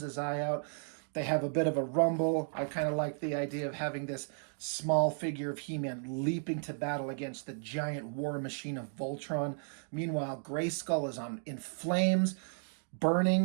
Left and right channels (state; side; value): silent; left; digital silence